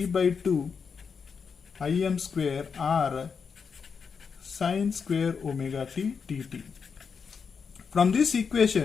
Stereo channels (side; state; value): right; quieter; 5.9 dB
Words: by 2 Im square R sine square omega t dt. From this